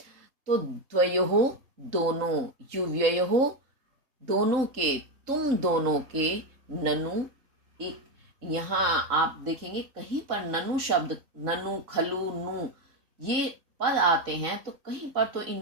तो द्वयोः दोनों, युव्ययोः दोनों के, तुम दोनों के, ननु एक, यहाँ आप देखेंगे कहीं पर ननु शब्द, ननु, खलु, नु ये पद आते हैं तो कहीं पर तो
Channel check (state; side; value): late; left; 3.3 ms